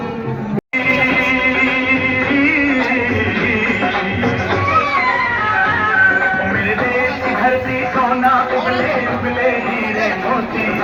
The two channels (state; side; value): identical; both; correlation 1.00